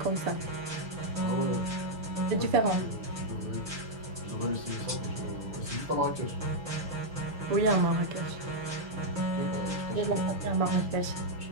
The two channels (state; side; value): late; left; 6.9 ms